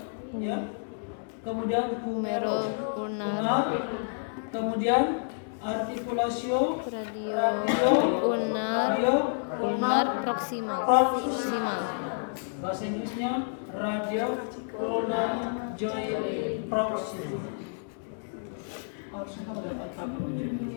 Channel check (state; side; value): silent; right; digital silence